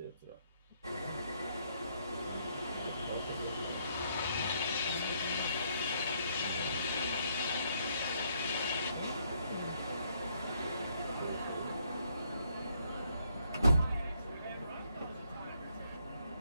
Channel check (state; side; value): inverted; both; correlation -0.71